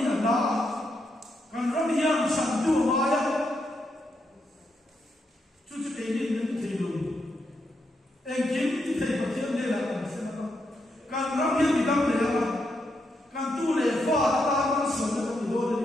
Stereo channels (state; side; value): normal; both; correlation 0.81